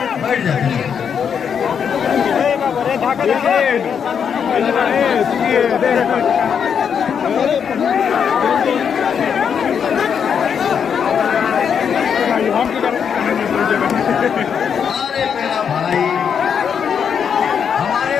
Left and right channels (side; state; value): right; quieter; 7.3 dB